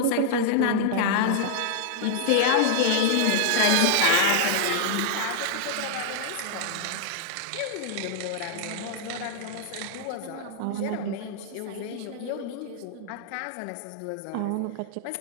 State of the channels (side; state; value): both; different; correlation -0.01